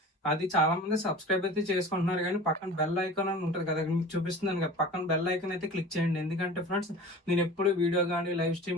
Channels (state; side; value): normal; both; correlation 0.39